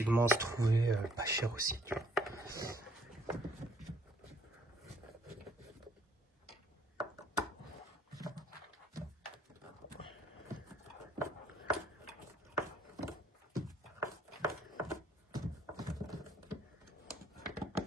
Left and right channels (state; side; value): normal; both; correlation 0.64